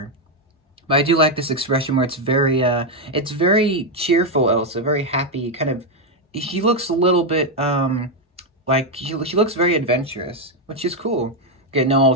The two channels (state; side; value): normal; both; correlation 0.03